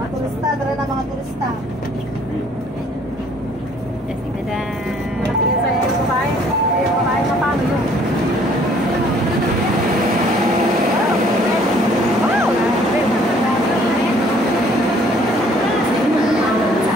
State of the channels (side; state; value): both; normal; correlation 0.59